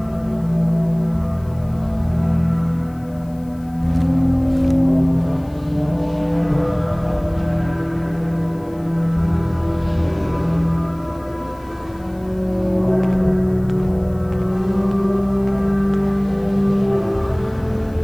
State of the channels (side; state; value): left; noise; hiss, 29 dB below the sound